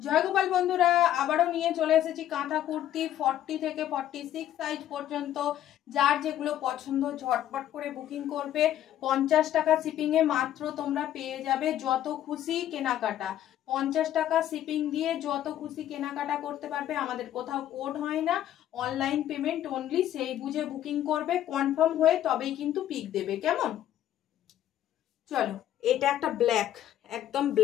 গোপাল বন্ধুরা, আবারও নিয়ে চলে এসেছি কাঁথা কুর্তি 40 থেকে 46 সাইজ পর্যন্ত। যার যেগুলো পছন্দ ঝটপট করে বুকিং করবে। 50 টাকা শিপিংয়ে মাত্র তোমরা পেয়ে যাবে যত খুশি কেনাকাটা। 50 টাকা শিপিং দিয়ে যত খুশি কেনাকাটা করতে পারবে। আমাদের কোথাও কোড হয় না, অনলাইন পেমেন্ট অনলি। সেই বুঝে বুকিং করবে, কনফার্ম হয়ে তবেই কিন্তু পিক দেবে। কেমন? চলো, এটা একটা ব্ল্যাক, একদম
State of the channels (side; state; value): right; quieter; 11.9 dB